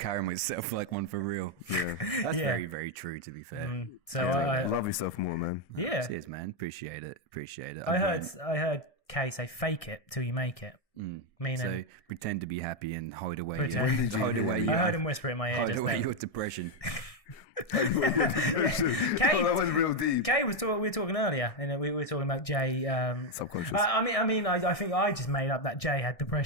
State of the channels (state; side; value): late; right; 1.6 ms